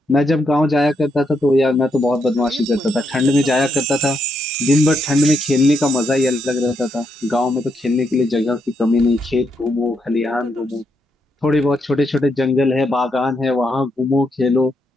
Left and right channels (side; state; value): both; normal; correlation 0.79